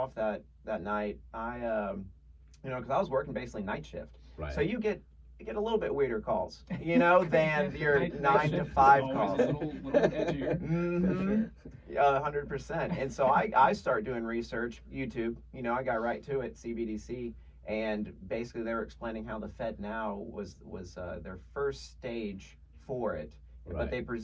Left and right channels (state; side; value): identical; both; correlation 1.00